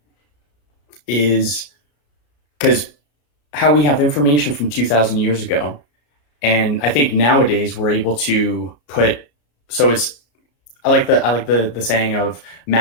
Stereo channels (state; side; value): late; right; 34 ms